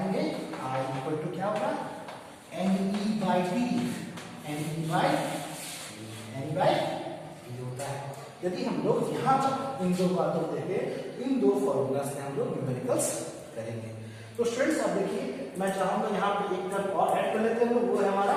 आई इक्वल टू क्या होगा, n e by t, n e by t होता है। यदि हम लोग यहाँ तक इन दो बातों को देखें, इन दो फॉर्मूला से हम लोग न्यूमेरिकल्स करेंगे। तो स्टूडेंट्स अब देखिए, मैं चाहूंगा यहाँ पे एक टर्म और ऐड कर लेते हैं, वो है हमारा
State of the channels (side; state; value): both; identical; correlation 1.00